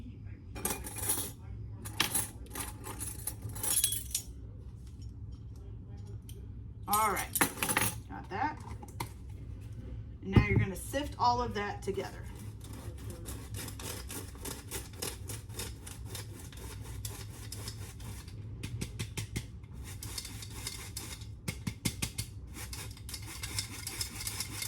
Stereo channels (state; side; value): identical; both; correlation 1.00